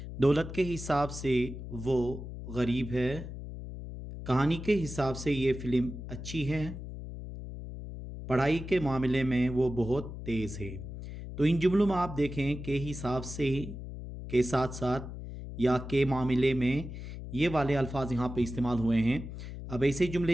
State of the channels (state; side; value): noise; left; hum, 9 dB below the sound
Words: दौलत के हिसाब से वो गरीब है, कहानी के हिसाब से ये फ़िल्म अच्छी है, पढ़ाई के मामले में वो बहुत तेज़ है। तो इन जुमलों में आप देखें के हिसाब से के साथ-साथ या के मामले में ये वाले अल्फ़ाज़ यहाँ पे इस्तेमाल हुए हैं। अब ऐसे